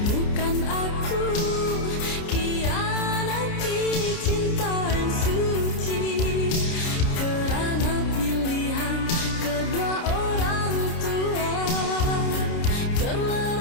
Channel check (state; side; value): late; right; 29 ms